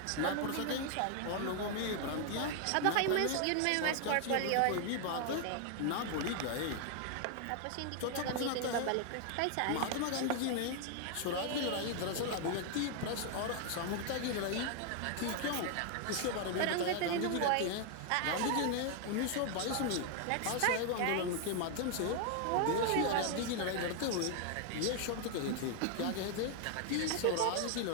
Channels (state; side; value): different; both; correlation 0.00